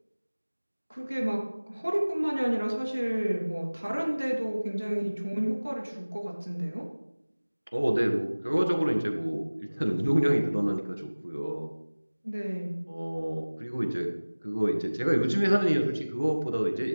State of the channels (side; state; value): both; inverted; correlation -1.00